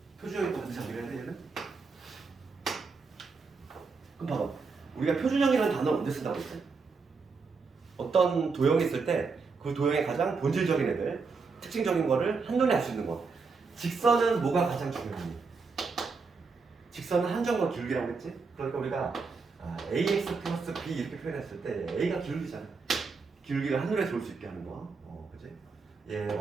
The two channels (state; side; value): quieter; left; 4.7 dB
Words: 표준형이 또 반드시 암기를 해야 돼, 얘는. 그럼 봐봐. 우리가 표준형이라는 단어를 언제 쓴다고 했지? 어떤 도형이 있을 때 그 도형의 가장 본질적인 애들, 특징적인 거를 한눈에 알 수 있는 거. 직선은 뭐가 가장 중요하니? 직선은 한정과 기울기라고 했지? 그러니까 우리가 ax 플러스 b 이렇게 표현했을 때 a가 기울기잖아. 기울기를 한눈에 볼 수 있게 하는 거. 그치? 얘